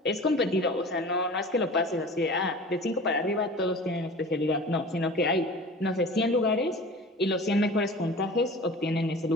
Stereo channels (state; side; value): normal; both; correlation 0.39